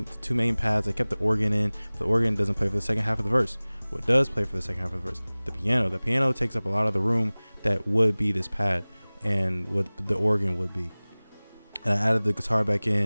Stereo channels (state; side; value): inverted; both; correlation -1.00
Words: main pads. I kept the organ in. But the organ doesn't play for the second half of the verse. What does play for the second half of the verse? The piano. The piano takes up a lot of the room that would be this pad, and what the organ would be. And I added the guitar back